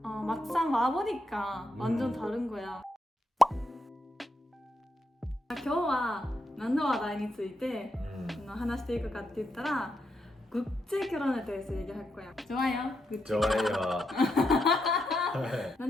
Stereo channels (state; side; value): normal; both; correlation 0.82